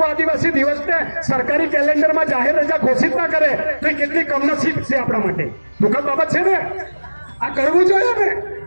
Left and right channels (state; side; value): inverted; both; correlation -1.00